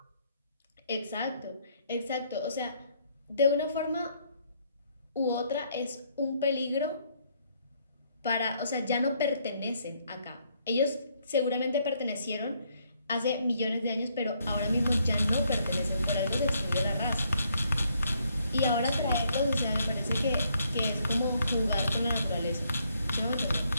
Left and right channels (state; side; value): inverted; both; correlation -0.71